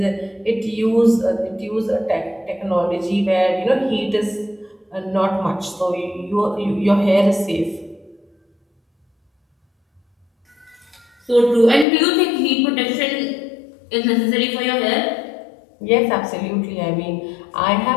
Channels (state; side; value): drops out; right; at 11.9 s